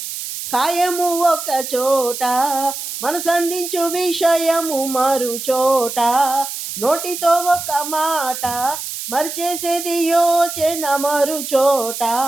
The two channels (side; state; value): right; noise; hiss, 7 dB below the sound